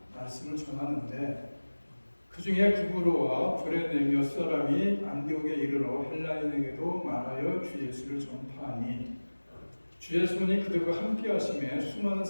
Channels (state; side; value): inverted; both; correlation -1.00